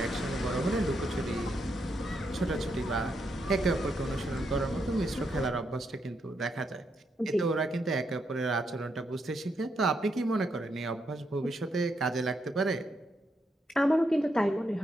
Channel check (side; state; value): both; normal; correlation 0.80